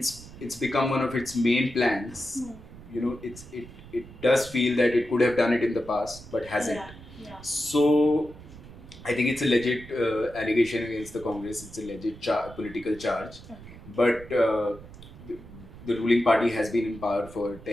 become one of its main plans. It does feel that it could have done it in the past, but hasn't. Yeah. So I think it's a legit allegation against the Congress. It's a legit political charge. Okay. But the ruling party has been in power for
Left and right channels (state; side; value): noise; right; rumble, 17 dB below the sound